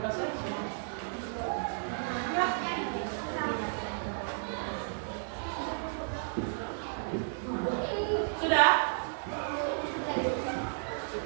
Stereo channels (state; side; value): silent; left; digital silence